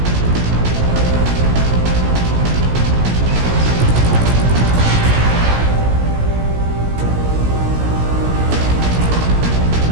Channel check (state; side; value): late; left; 17 ms